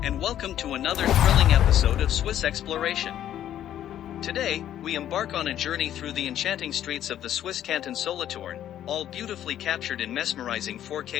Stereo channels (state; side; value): quieter; right; 11.3 dB